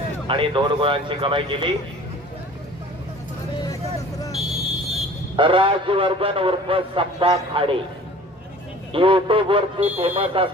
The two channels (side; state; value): both; normal; correlation 0.46